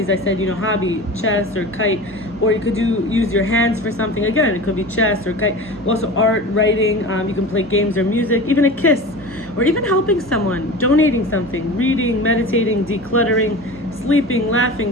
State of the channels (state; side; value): normal; both; correlation 0.33